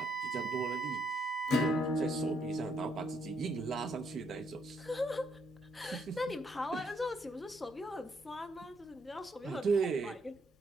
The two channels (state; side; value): normal; both; correlation 0.73